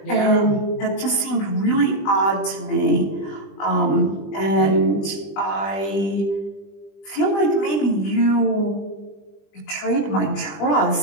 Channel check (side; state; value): right; late; 20 ms